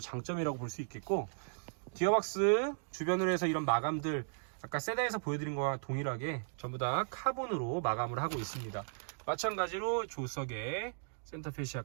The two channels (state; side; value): silent; left; digital silence